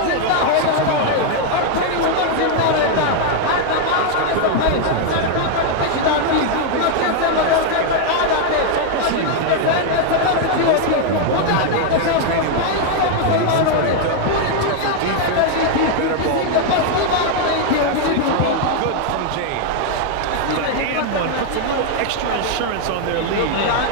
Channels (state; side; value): different; both; correlation 0.00